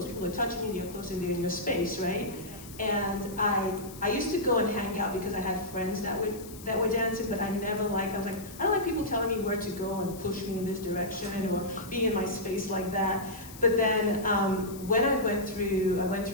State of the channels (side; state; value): left; noise; hiss, 17 dB below the sound